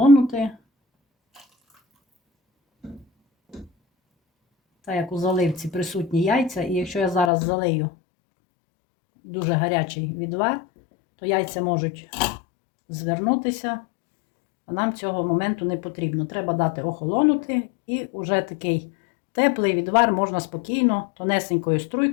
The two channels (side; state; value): right; drops out; at 7.3 s